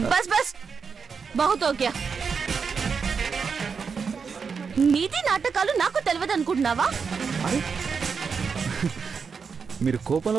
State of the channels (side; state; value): left; quieter; 5.7 dB